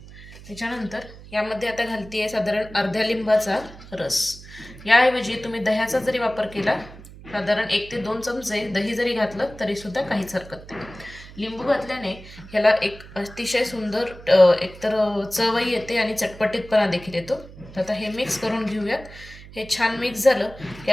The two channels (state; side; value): noise; right; hum, 17 dB below the sound